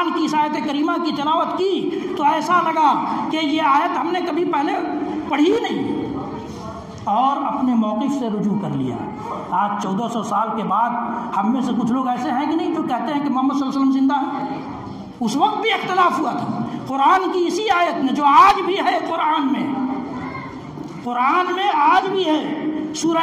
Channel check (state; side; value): identical; both; correlation 1.00